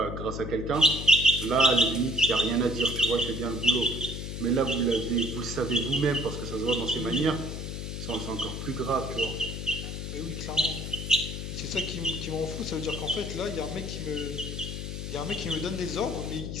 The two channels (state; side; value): noise; left; hum, 6 dB below the sound